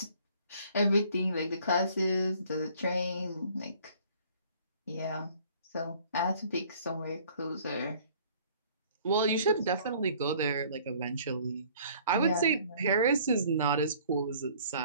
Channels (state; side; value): inverted; both; correlation -0.55